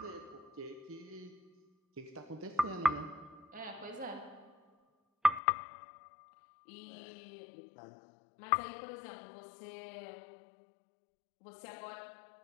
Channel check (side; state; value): right; drops out; at 5.4 s